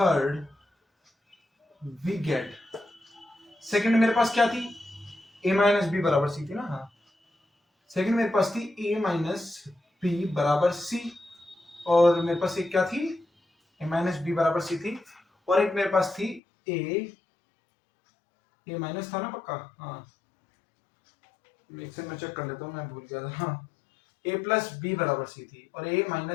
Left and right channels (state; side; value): drops out; right; at 16.4 s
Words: we get. Second मेरे पास क्या थी, a माइनस बी बराबर सी थी ना। हाँ, सेकेंड मेरे पास थी a माइनस बी बराबर सी, और मेरे पास एक क्या थी, a माइनस बी बराबर सी थी, और एक मेरे पास थी a माइनस था ना पक्का। हाँ, एक से मैं चेक कर लेता हूँ, मैं भूल गया था। हाँ, a प्लस बी बराबर सी थी, और a